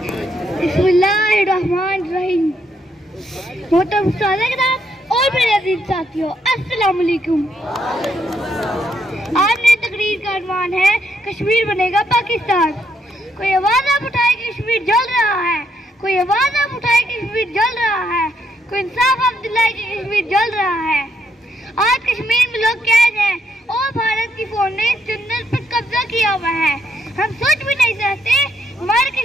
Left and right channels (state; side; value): normal; both; correlation 0.75